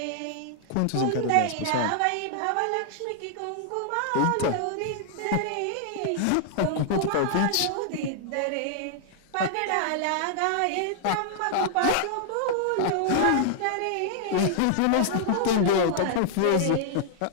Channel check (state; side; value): different; both; correlation -0.01